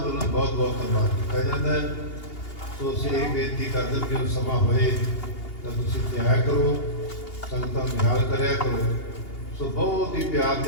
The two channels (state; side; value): late; right; 2.8 ms